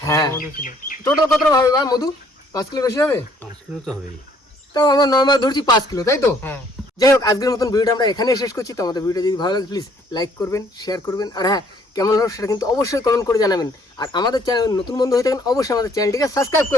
হ্যাঁ টোটাল কতটা ভাবে বা মধু? 5 কিলো বেশি হবে? 5 কিলো তো হবেই। তাও আমরা নর্মাল ধরছি 5 কিলো, তাই তো? যাই হোক আজকের মতন ভিডিওটা আমরা এখানেই শেষ করছি। তো আমাদের ভিডিওটা যদি ভালো লাগে প্লিজ লাইক করবেন, শেয়ার করবেন, আর হ্যাঁ কেমন হলো সেটা কিন্তু অবশ্যই কমেন্ট করে জানাবেন। আর আমাদের চ্যানেল নতুন বন্ধু হয়ে থাকেন অবশ্যই আমাদের চ্যানেলটিকে সাবস্ক্রাইব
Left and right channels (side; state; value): both; normal; correlation 0.62